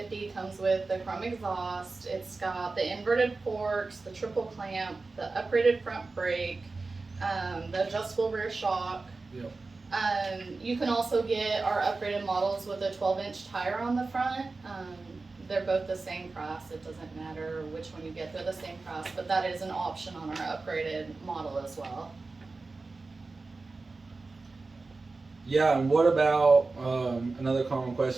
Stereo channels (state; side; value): quieter; left; 3.7 dB